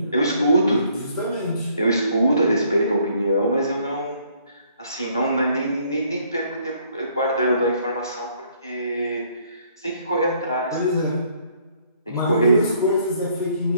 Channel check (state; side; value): inverted; both; correlation -0.65